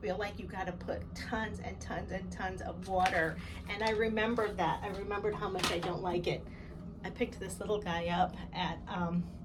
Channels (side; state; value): both; identical; correlation 1.00